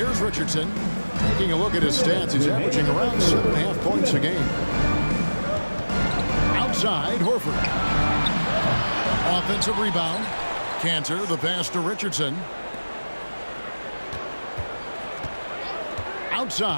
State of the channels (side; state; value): both; inverted; correlation -1.00